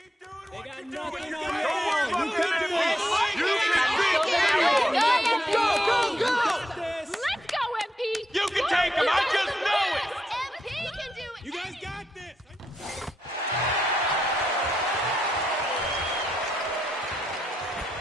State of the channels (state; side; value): normal; both; correlation 0.82